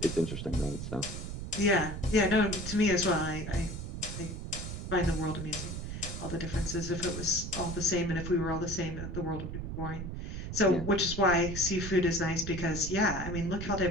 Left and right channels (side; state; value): right; noise; rumble, 6 dB below the sound